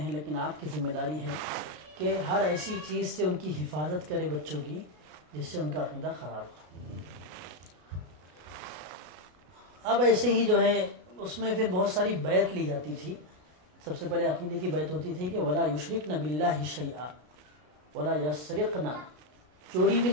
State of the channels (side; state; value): left; late; 33 ms